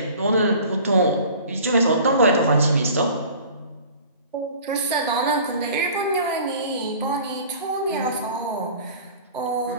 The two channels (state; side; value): inverted; both; correlation -0.45